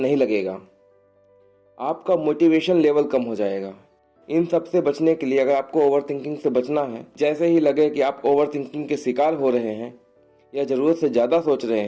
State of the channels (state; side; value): identical; both; correlation 1.00